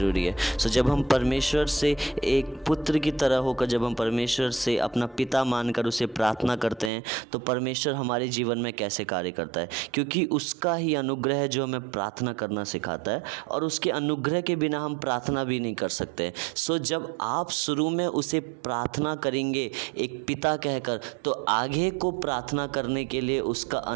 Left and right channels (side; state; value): left; drops out; at 6.9 s